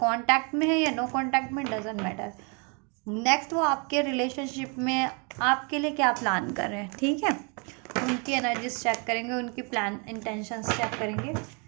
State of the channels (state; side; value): quieter; left; 34.9 dB